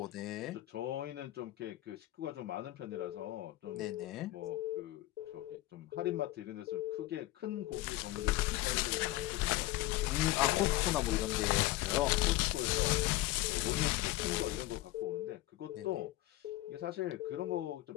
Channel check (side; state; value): right; quieter; 17.0 dB